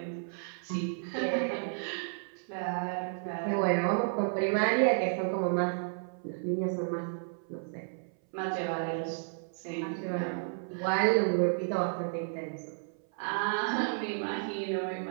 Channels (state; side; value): silent; left; 56 dB below the other